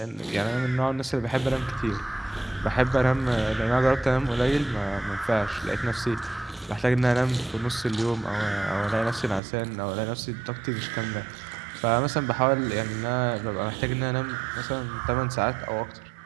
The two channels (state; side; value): drops out; left; at 9.4 s